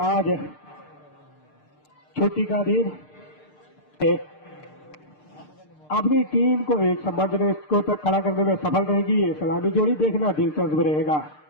आज छुट्टी का दिन अपनी टीम को एक सम्मानजनक स्कोर तक खड़ा करने में सफल रहेगी। ये सलामी जोड़ी देखना दिलचस्प रहेगा।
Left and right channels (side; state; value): right; late; 6.6 ms